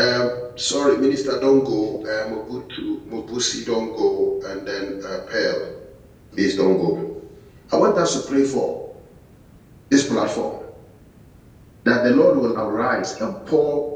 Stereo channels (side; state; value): both; identical; correlation 1.00